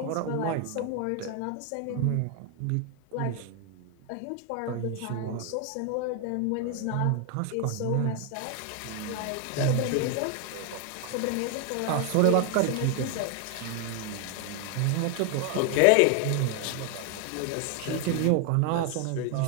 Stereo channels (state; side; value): different; both; correlation 0.01